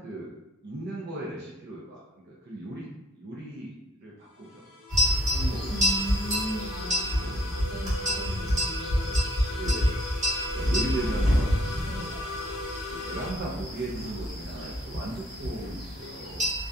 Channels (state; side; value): normal; both; correlation 0.59